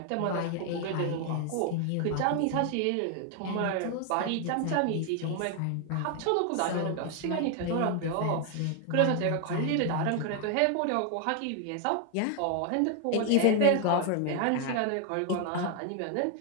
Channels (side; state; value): both; different; correlation 0.00